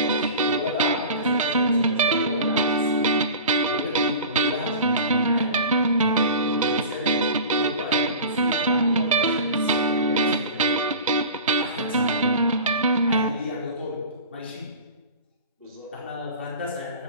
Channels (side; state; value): both; inverted; correlation -0.36